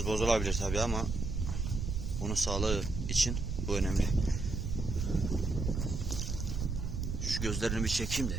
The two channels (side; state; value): right; noise; rumble, 3 dB below the sound